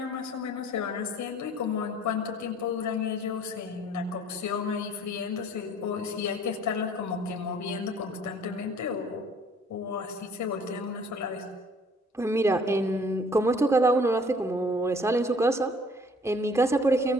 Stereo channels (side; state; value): both; normal; correlation 0.54